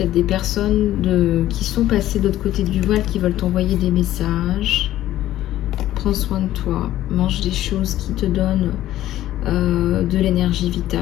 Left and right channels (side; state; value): right; quieter; 13.7 dB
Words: des personnes qui sont passées de l'autre côté du voile qui veulent t'envoyer des messages. Prends soin de toi, mange des choses qui te donnent de l'énergie